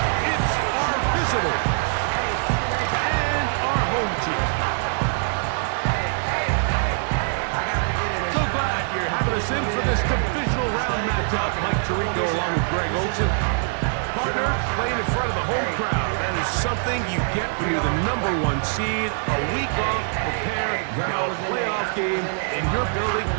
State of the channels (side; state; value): left; silent; 63 dB below the other